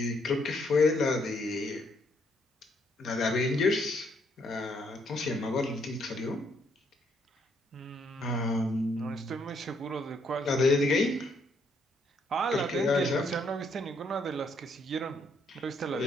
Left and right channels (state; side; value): normal; both; correlation 0.71